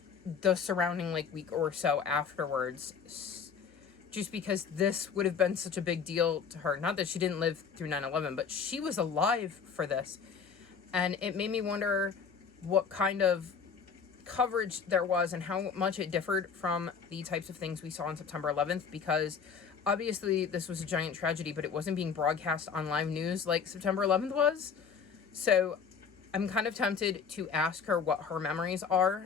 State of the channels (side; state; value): right; quieter; 6.2 dB